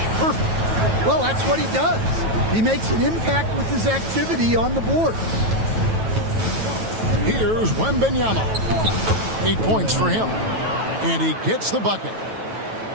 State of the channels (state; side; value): late; left; 9.2 ms